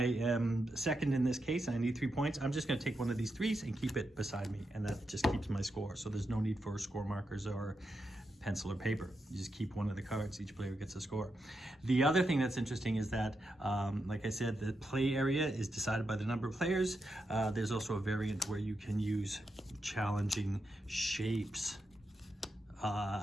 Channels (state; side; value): normal; both; correlation 0.86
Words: am second in this case and I need 3 points, I'm just gonna take one of these 3s and keep it beside me, and that just keeps my score. So there's no need for score markers or pencil or paper. You just keep one of the cards, each player gets a score. The other thing that's interesting is that, like I said, the play area is decided by the number of players. There's also a variant where you can use challenging shapes